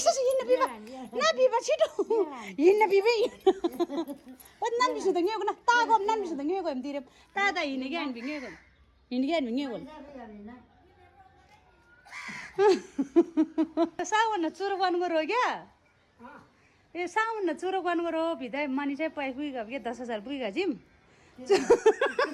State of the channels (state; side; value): identical; both; correlation 1.00